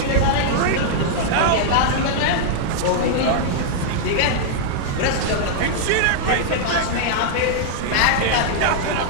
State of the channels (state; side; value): different; both; correlation -0.01